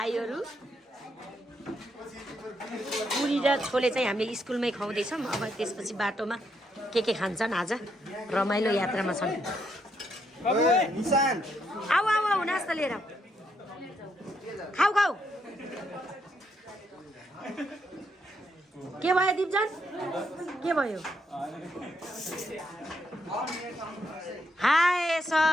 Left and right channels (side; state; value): both; normal; correlation 0.77